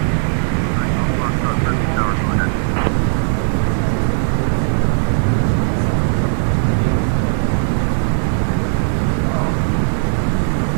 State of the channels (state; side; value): silent; left; 66 dB below the other